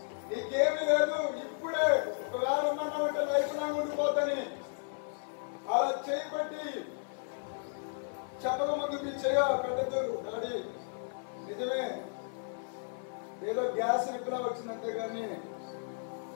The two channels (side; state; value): right; silent; 55 dB below the other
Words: నీకేమీ లేదు, ఇప్పుడే ఒకవేళ ఉన్నామంటే లైఫ్ లాంగ్ ఉండిపోతాని అలా చేయబట్టి చెప్పక ముందు మీ చేయ పెట్టద్దు. డాడీ నిజమే, ఏదో గ్యాస్ నిప్పులా వచ్చిందంతే కానీ